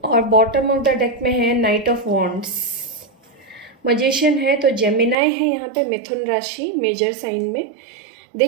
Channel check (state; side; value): drops out; left; at 5.2 s